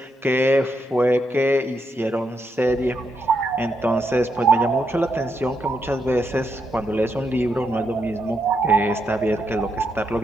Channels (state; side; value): normal; both; correlation 0.80